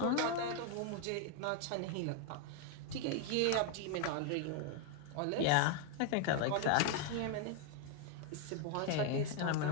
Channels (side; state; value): both; different; correlation 0.01